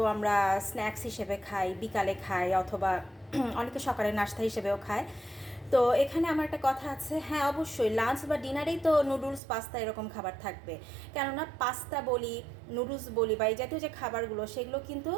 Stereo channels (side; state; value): left; drops out; at 9.4 s